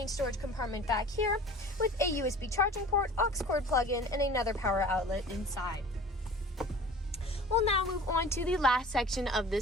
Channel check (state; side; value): normal; both; correlation 0.43